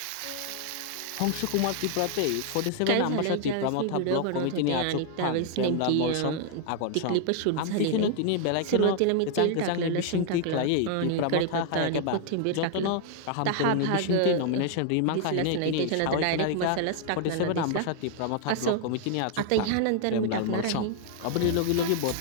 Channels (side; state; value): both; different; correlation 0.00